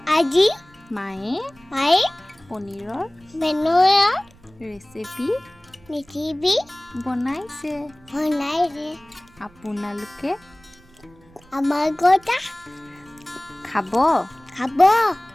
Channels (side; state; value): right; noise; rumble, 28 dB below the sound